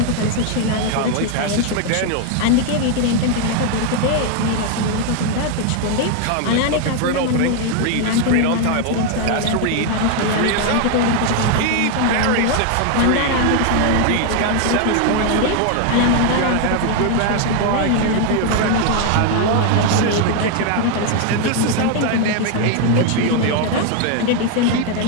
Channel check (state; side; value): different; both; correlation 0.01